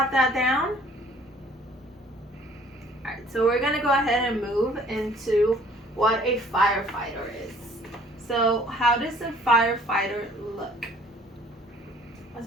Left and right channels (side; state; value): both; normal; correlation 0.55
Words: that down? Alright, so we're going to go ahead and move into what a firefighter is. So how does a firefighter look? As